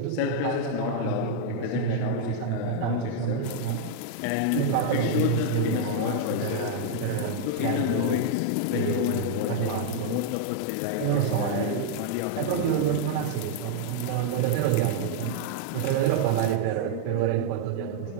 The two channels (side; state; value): both; different; correlation -0.01